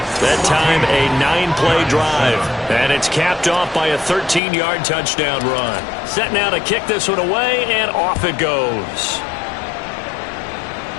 That time a 9-play drive. And it's capped off by a 13-yard touchdown run. Set now to kick this one away, and off it goes.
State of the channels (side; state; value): right; drops out; at 4.4 s